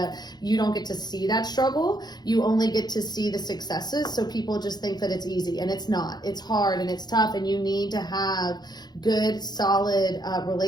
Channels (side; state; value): right; late; 0.20 ms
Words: you don't get to see that struggle. You only get to see the successes. So people just think that it's easy, and it's not. It's hard and it's tough, and you need to have good, solid